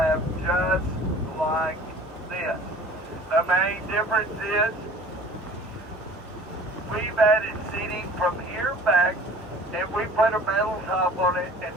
just like this. The main difference is we've added seating from here back, and we put a metal top on it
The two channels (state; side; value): normal; both; correlation 0.47